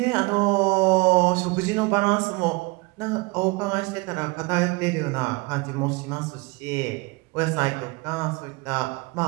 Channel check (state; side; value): quieter; left; 25.8 dB